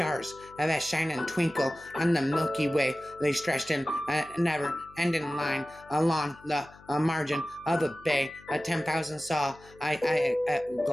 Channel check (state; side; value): noise; left; hum, 24 dB below the sound